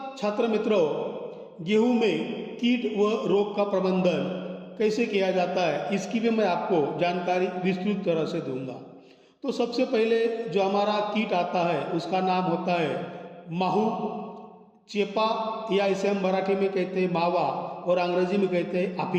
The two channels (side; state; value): both; identical; correlation 1.00